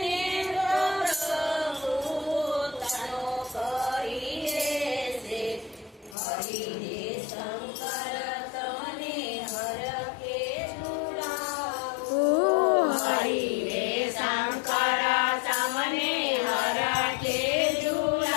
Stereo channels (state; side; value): drops out; right; at 6.2 s